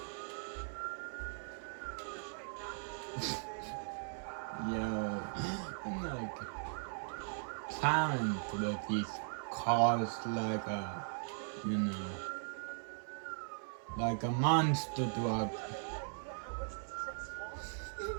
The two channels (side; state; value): left; silent; 52 dB below the other